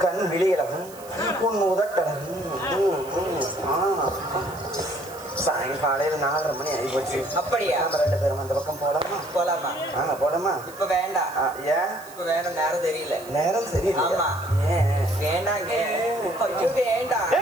கண் விழி அழகும், உன் உதட்டழகும். சாயங்காலையில் 4:30 மணி ஆகிப்போச்சு. அப்படியா? நம்ம 2 பேரும் அந்த பக்கம் போலாமா? போலாமா? போலாமா? இப்ப வேண்டாம். ஏன் இப்ப வேணும்? நேரம் தெரியல. நேரம் சரியில்லை. ஆமா. வேண்டாங்க. ஐயோ வேண்டாம்.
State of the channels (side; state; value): right; noise; hiss, 19 dB below the sound